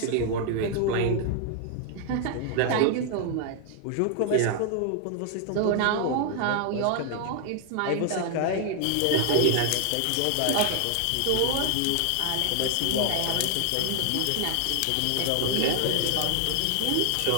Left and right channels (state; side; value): different; both; correlation 0.00